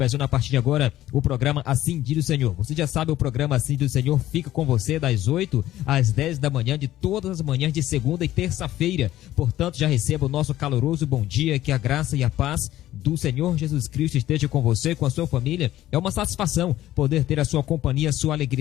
a partir de agora o programa Assim do Senhor. Você já sabe, o programa Assim do Senhor fica com você das 8 às 10 da manhã, de todas as manhãs de segunda e terça-feira, portanto já receba o nosso caloroso bom dia, que a graça e a paz do Senhor Jesus Cristo esteja com você, com a sua família. É uma satisfação poder ter a sua companhia, a sua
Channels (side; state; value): right; quieter; 14.1 dB